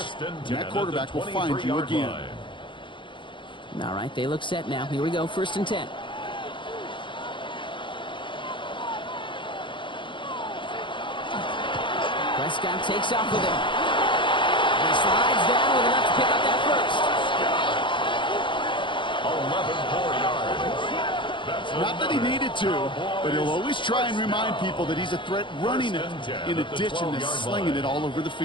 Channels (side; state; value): right; late; 0.24 ms